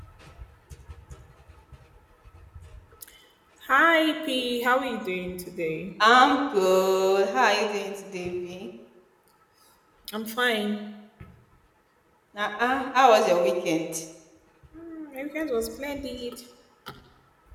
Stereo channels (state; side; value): identical; both; correlation 1.00